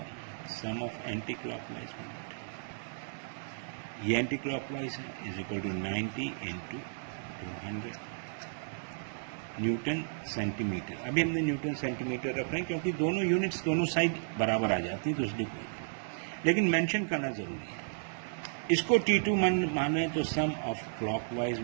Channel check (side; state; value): left; silent; digital silence